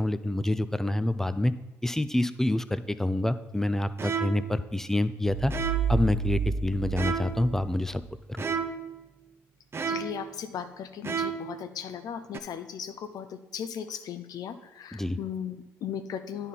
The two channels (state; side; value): normal; both; correlation 0.82